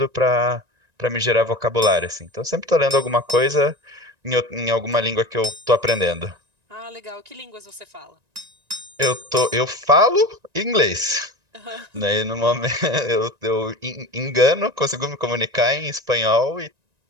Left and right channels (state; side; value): late; left; 1.9 ms